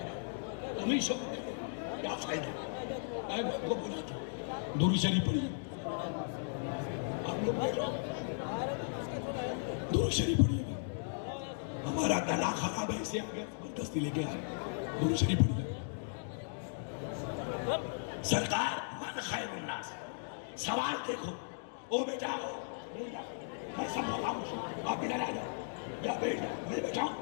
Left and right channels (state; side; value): silent; right; digital silence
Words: گا، تم ہی شوق کرو کیا فائدہ؟ میں آپ کو بلاتا ہوں درود شریف پڑھیے، آپ لوگ بیٹھو درود شریف پڑھیے گا، ہمارا گلا خراب ہے اسے آگے زبردستی لے کے آئے، درود شریف پڑھیے۔ سرکار من خیر الناس، سوال دیکھو، او بیٹا ہو میں سب خاموش ہوں، آپ ادھر آ جاؤ یا بیٹھ جاؤ، میں بیٹھا ہوں۔